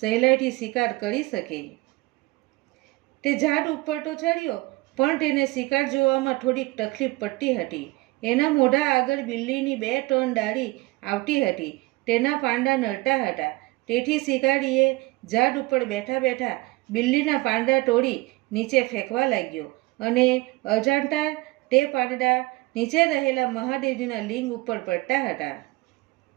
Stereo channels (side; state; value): left; quieter; 21.9 dB